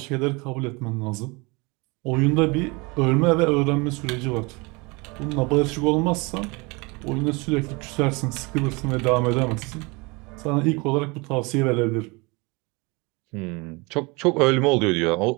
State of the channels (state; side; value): quieter; left; 27.2 dB